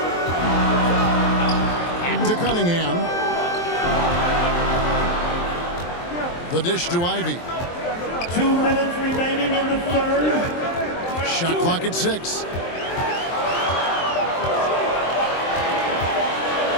Back to Cunningham. The dish to Ivy. 2 minutes remaining in the third. Shot clock at 6.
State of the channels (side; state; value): right; late; 23 ms